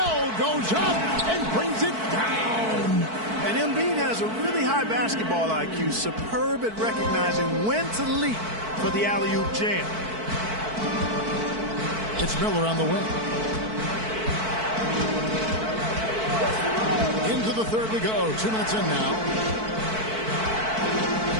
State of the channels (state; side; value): late; left; 4.5 ms